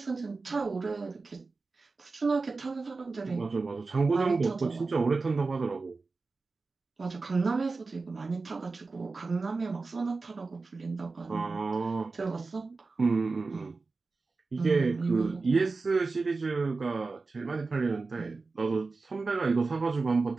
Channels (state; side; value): quieter; left; 3.9 dB